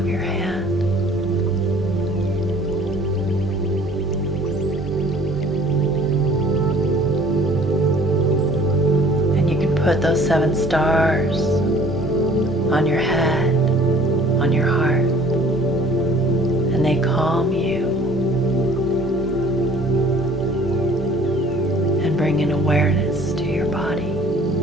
your hand. And you can put those 7 stars on your head, on your heart. And they calm you. bring an awareness to your body,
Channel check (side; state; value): both; normal; correlation 0.52